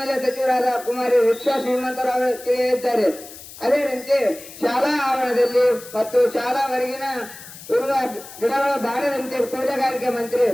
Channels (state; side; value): noise; left; hiss, 16 dB below the sound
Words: ಸಚಿವರಾದ ಕುಮಾರಿ ರಿಕ್ಷಾ ಶ್ರೀಮಂತರಾವ್ ತಿಳಿಸಿದ್ದಾರೆ. ಅದೇನಂತೆ ಶಾಲಾ ಆವರಣದಲ್ಲಿ ಮತ್ತು ಶಾಲಾ ಹೊರಗಿನ ಇರುವ ಗಿಡಗಳು ಬಾಡದಂತೆ ತೋಟಗಾರಿಕೆ ಮಂತ್ರಿ